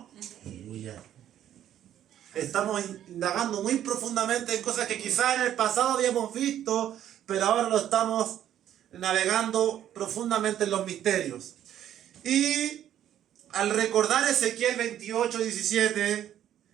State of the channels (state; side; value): quieter; left; 11.1 dB